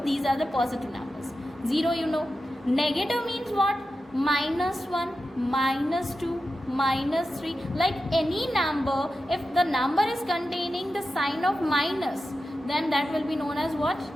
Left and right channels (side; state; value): both; normal; correlation 0.91